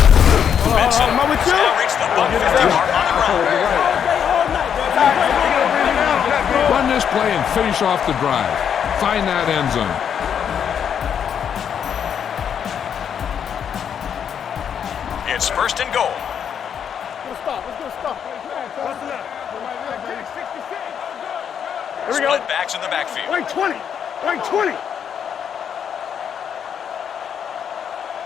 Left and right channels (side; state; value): right; quieter; 8.1 dB